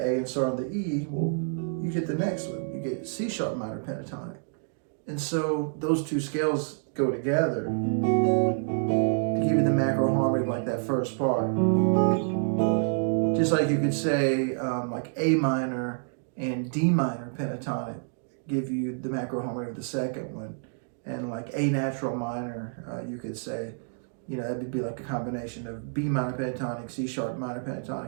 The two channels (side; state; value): left; silent; digital silence